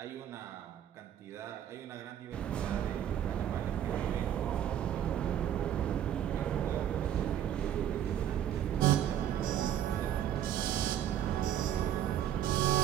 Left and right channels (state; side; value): quieter; left; 10.5 dB